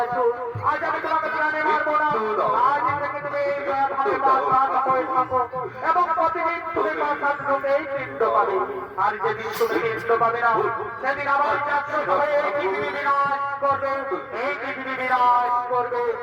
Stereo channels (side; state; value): both; identical; correlation 1.00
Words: আজ আমি তোমাকে প্রাণে মারবো না। আজ থেকে তুমি এই ভাবে বাঁচাতে হয়ে থাকো এবং প্রতিদিন তুমি বাঁচাতেই পিণ্ড পাবে। আর যেদিন তুমি পিণ্ড পাবে না, সেদিন আমার চাকর হয়ে এই পৃথিবী বিনাশ করবে, এই পৃথিবী বিনাশ করবে,